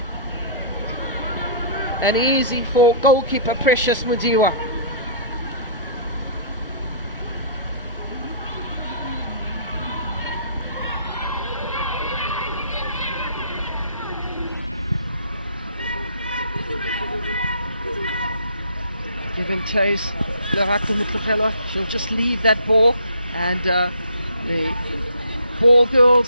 And easy for goalkeeper Precious Mudiwa. Give him chase. She'll just leave that ball, and the ball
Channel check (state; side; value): inverted; both; correlation -0.51